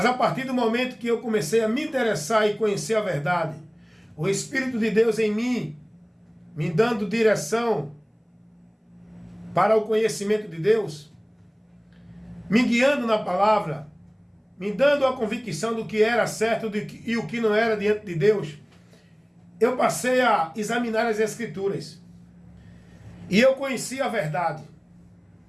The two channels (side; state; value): both; identical; correlation 1.00